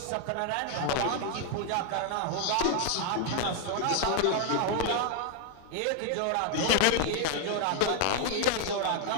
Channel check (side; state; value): both; different; correlation 0.00